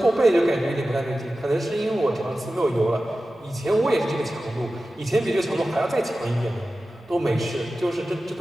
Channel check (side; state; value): both; normal; correlation 0.94